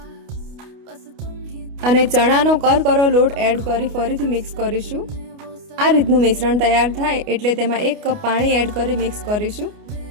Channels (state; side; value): late; left; 29 ms